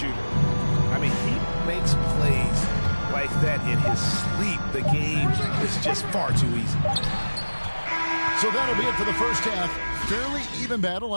I mean, he makes plays like that in his sleep. The game is just far too easy. So that'll be it for the first half. Fairly even battle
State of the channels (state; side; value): inverted; both; correlation -1.00